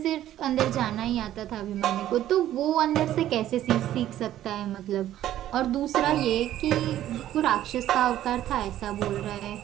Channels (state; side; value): quieter; left; 12.7 dB